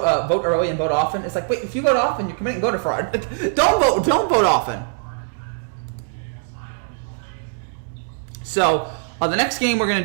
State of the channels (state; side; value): silent; left; digital silence